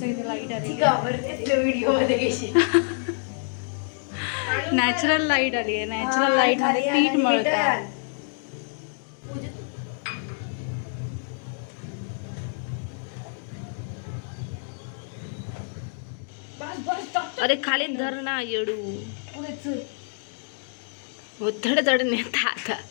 इथे लाईट आली. व्हिडिओ मध्ये घेशील. नॅचरल लाईट आली आहे. नॅचरल लाईट मध्ये पीठ मळता. अरे खाली धर ना येडू. थोडं थोडं नेता आता.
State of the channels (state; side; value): silent; right; 60 dB below the other